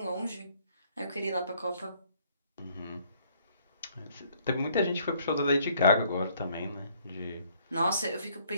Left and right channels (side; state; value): both; inverted; correlation -0.63